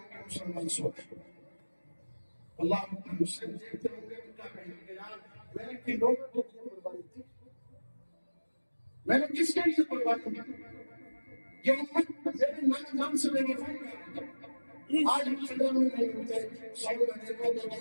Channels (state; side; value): inverted; both; correlation -1.00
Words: کے مسلمان سو گئے۔ اللہ حسین دیکھتے ہوں گے تو کیا کہیں گے، یار میں نے کن لوگوں کے لیے قربانی دی، میں نے کس کے لیے قربانی دی، یہ امت میرے نام نام سے میرے فون کر آج ہم خبر میں نہیں ہوتے، سب میں دیکھو تو